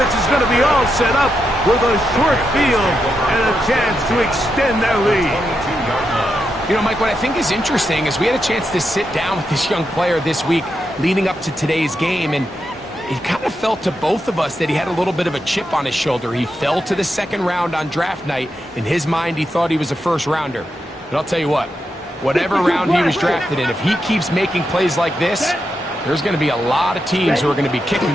is going to be all set up with a short field and a chance to extend their lead. You know, Mike, what I think is interesting is we had a chance to sit down with this young player this week leading up to today's game, and it kind of felt to both of us that he had a little bit of a chip on his shoulder. He fell to the 2nd round on draft night. In his mind, he thought he was a 1st rounder. But I'll tell you what, whatever round he was drafted in, if he keeps making plays like this, there's going to be a lot of teams who are going to be kicking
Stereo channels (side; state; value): both; normal; correlation 0.85